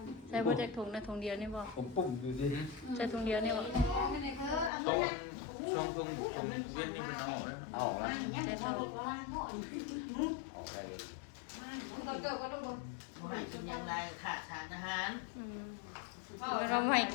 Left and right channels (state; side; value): drops out; right; at 4.7 s